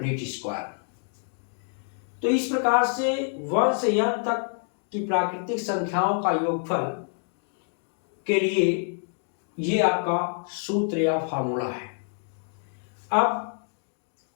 स्क्वायर। तो इस प्रकार से 1 से n तक की प्राकृतिक संख्याओं का योगफल के लिए ये आपका सूत्र या फार्मूला है। अब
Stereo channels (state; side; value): silent; right; 60 dB below the other